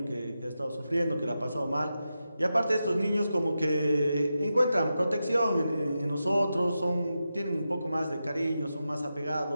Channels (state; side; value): inverted; both; correlation -0.90